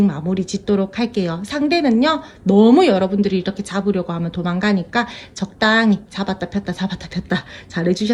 마무리 짓도록 할게요. 상대는요, 너무 여러분들이 이렇게 잡으려고 하면 도망가니까 적당히 잡았다 폈다 잡았다 폈다 잘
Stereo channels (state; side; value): identical; both; correlation 1.00